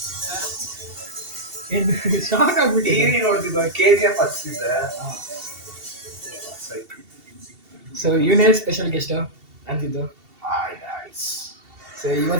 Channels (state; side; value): late; left; 2.7 ms